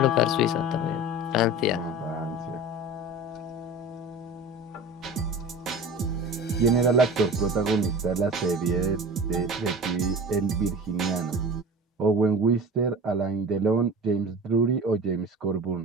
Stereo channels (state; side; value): normal; both; correlation 0.36